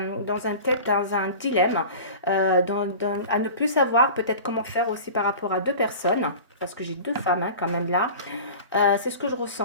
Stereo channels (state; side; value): inverted; both; correlation -0.37